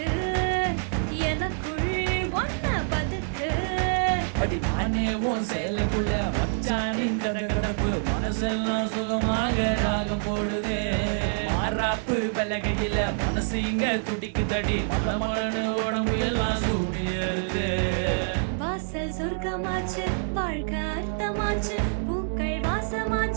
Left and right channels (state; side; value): silent; left; digital silence